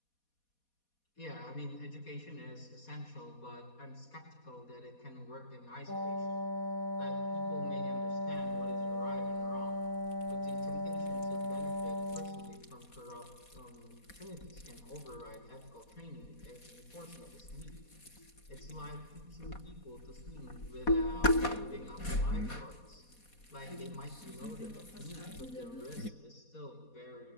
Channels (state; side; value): late; right; 4.2 ms